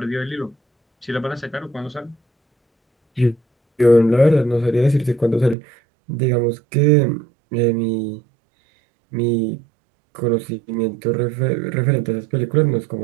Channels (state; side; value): drops out; left; at 5.6 s